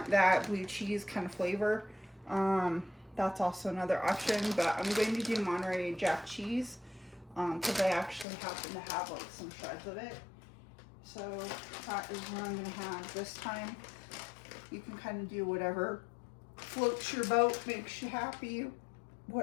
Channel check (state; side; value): drops out; right; at 8.2 s